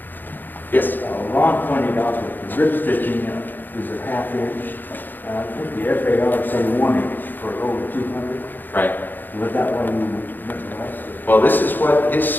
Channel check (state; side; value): late; right; 0.089 ms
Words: Yes? Ron pointed out that the rib stitching is a half inch. I think the FAR said 1 inch for over 200. Right. Was that what you meant? Well, this is what his